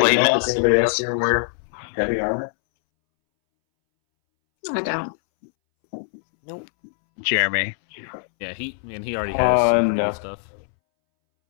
does anybody else here wear heavy armor? I don't. Nope. Jeremy. Yeah, he already has some no. stuff.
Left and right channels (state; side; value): silent; right; 64 dB below the other